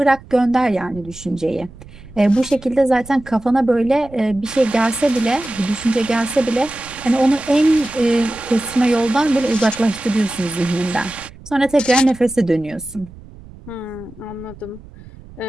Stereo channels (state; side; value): noise; right; rumble, 19 dB below the sound